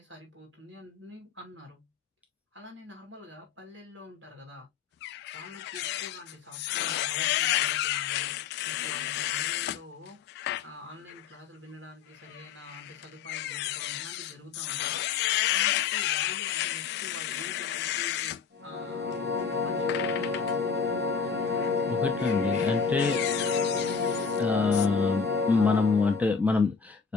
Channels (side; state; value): right; quieter; 5.9 dB